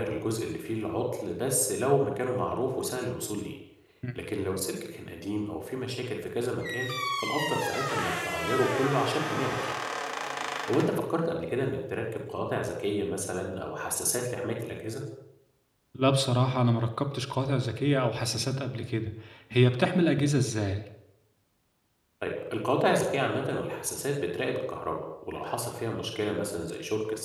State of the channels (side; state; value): both; identical; correlation 1.00